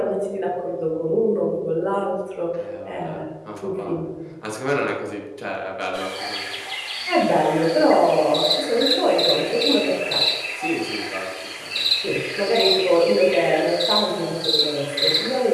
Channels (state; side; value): identical; both; correlation 1.00